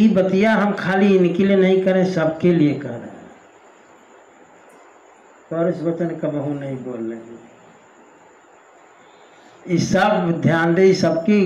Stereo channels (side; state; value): both; identical; correlation 1.00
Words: बतिया हम खाली इनके लिए नहीं करें, सबके लिए कर रहे हैं। और इस वचन कबहू नहीं बोल रहे। इस सब ध्यान दे, सबकी